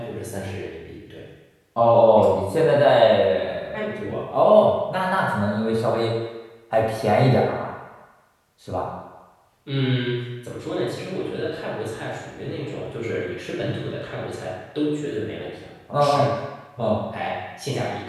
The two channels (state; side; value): identical; both; correlation 1.00